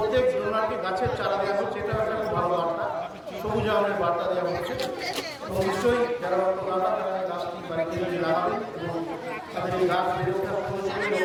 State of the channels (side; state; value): both; identical; correlation 1.00